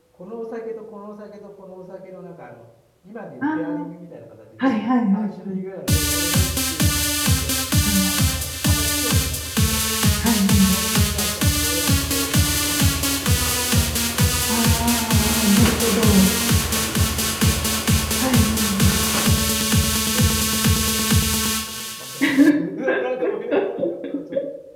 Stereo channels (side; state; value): both; identical; correlation 1.00